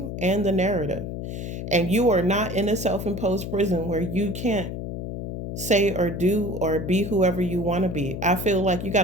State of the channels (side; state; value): left; noise; hum, 6 dB below the sound